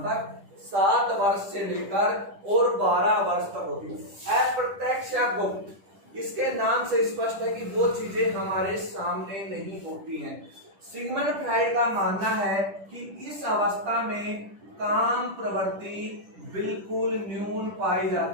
तक? 7 वर्ष से लेकर और 12 वर्ष तक होती है। अप्रत्यक्ष या गुप्त, इसके नाम से स्पष्ट है कि वो चीजें हमारे सामने नहीं होती हैं। सिगमंड फ्राइड का मानना है कि इस अवस्था में काम प्रवृत्ति बिल्कुल न्यून पाई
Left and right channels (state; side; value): late; left; 10 ms